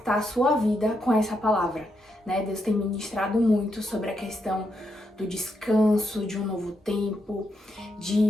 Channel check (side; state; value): both; normal; correlation 0.81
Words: a sua vida com essa palavra, né? Deus tem ministrado muito sobre a questão do descanso, de um novo tempo,